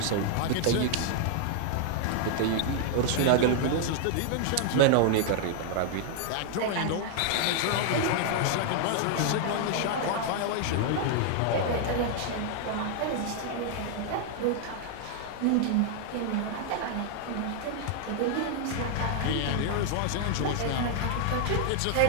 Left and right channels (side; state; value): both; different; correlation 0.00